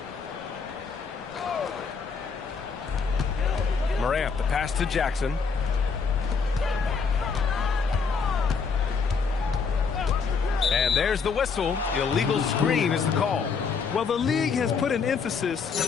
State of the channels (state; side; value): quieter; right; 5.5 dB